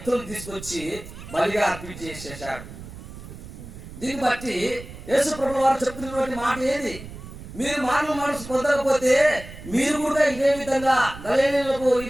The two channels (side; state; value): right; noise; rumble, 14 dB below the sound